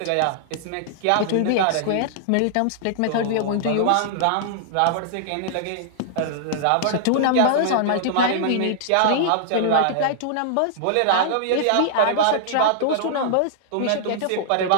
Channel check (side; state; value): both; different; correlation -0.01